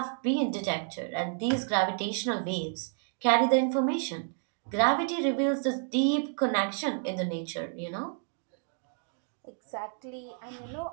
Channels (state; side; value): silent; left; 58 dB below the other